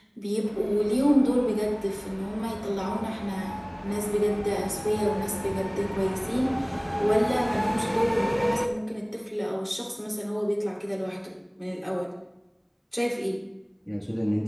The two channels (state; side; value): identical; both; correlation 1.00